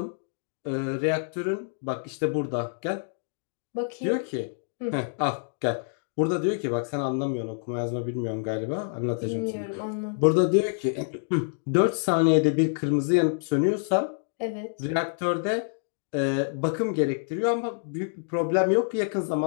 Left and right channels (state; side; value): silent; right; digital silence